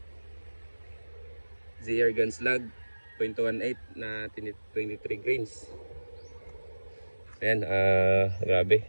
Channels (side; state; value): both; inverted; correlation -1.00